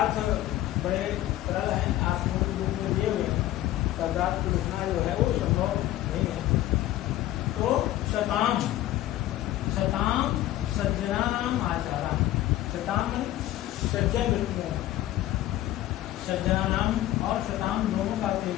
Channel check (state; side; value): quieter; right; 14.5 dB